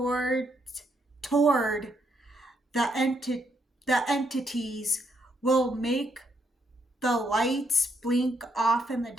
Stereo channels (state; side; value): normal; both; correlation 0.75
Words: the entities will make the lights blink off in the